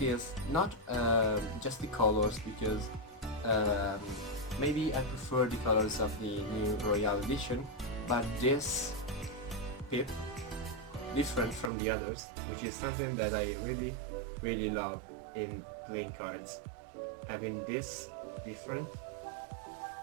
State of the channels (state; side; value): drops out; left; at 11.7 s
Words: is not just the colors, because maybe I prefer the colors of the new Royale edition, but this pip different from the others, which is something that I really love in playing cards. Having this different